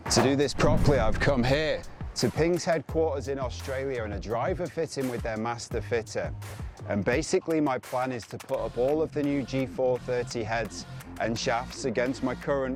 To do this properly, I've come here to Ping's headquarters in Australia and a driver fitting with their master fitter. And basically my plan is to put up all of the new G430 heads and shafts against my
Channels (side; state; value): both; identical; correlation 1.00